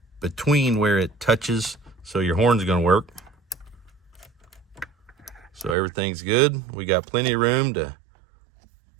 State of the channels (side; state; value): left; drops out; at 5.8 s